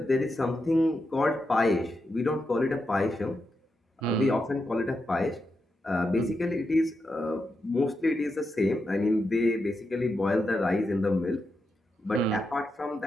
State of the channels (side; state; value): both; normal; correlation 0.86